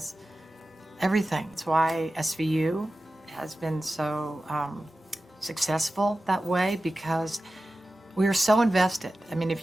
everything. It's why SVU has been so successful that way, because we are so invested.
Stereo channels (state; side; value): normal; both; correlation 0.94